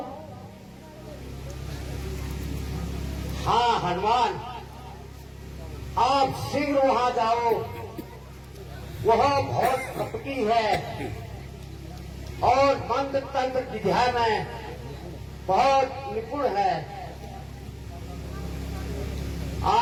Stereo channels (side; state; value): both; identical; correlation 1.00